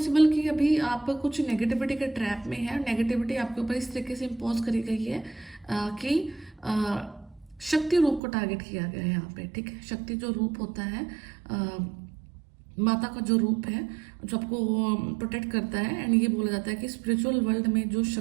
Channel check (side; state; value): left; drops out; at 8.2 s